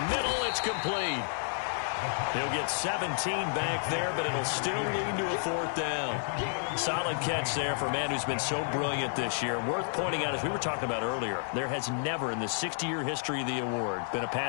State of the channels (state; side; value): silent; right; digital silence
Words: middle, it's complete. He'll get 17 back there, but it'll still lead to a 4th down. Solid catch there for a man who's been so brilliant this year. Worth pointing out, as we were talking about earlier, there has never in the 60-year history of the award been a